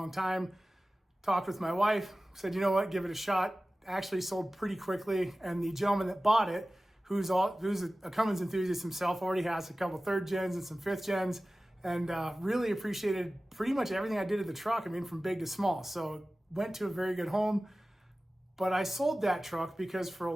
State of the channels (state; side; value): normal; both; correlation 0.97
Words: time. Talked with my wife, said, you know what, give it a shot. Actually sold pretty quickly, and the gentleman that bought it, who's a Cummins enthusiast himself, already has a couple third gens and some fifth gens, and really appreciated pretty much everything I did to the truck. I mean, from big to small. So went to a very good home. But I sold that truck because for a